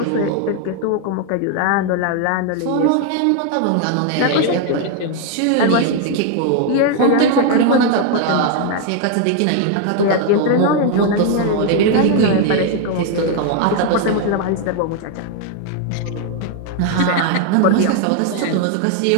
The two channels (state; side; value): different; both; correlation 0.01